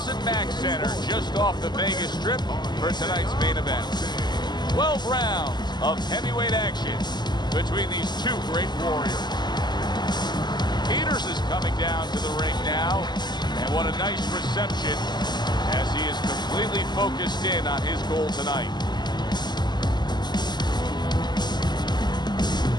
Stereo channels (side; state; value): right; late; 0.21 ms